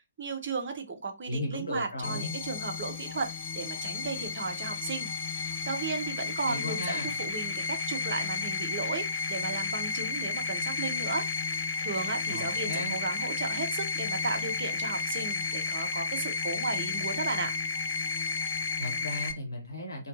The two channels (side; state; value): both; inverted; correlation -0.54